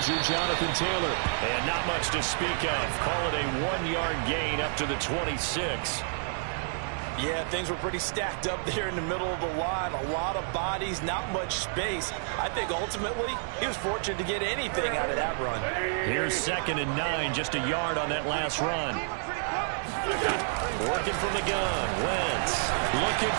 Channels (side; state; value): left; silent; 58 dB below the other